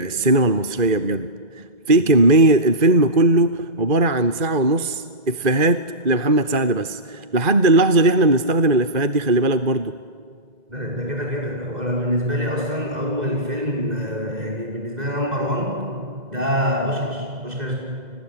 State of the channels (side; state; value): left; late; 2.0 ms